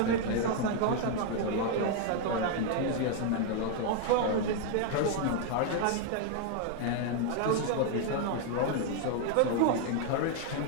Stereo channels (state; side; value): different; both; correlation 0.00